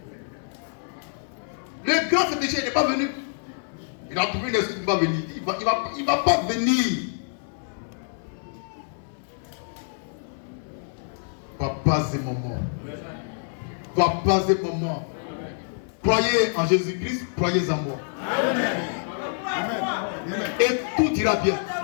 Le grand féticheur, il n'est pas venu. Il a trouvé une excuse, il va venir. Il va pas venir. Papas et maman. Papas et maman. Croyez en Jésus-Christ, croyez en moi. Amen. Et tout ira bien.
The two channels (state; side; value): silent; right; 58 dB below the other